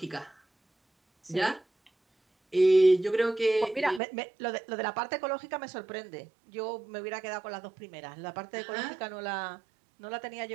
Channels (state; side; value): drops out; left; at 4.0 s